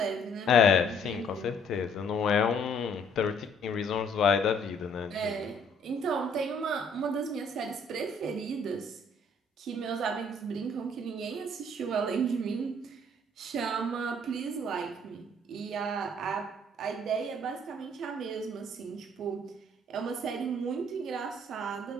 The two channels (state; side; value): normal; both; correlation 0.61